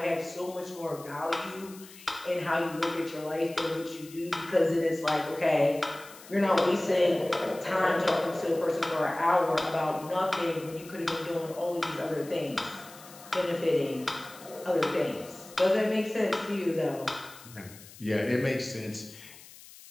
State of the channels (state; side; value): noise; left; hiss, 19 dB below the sound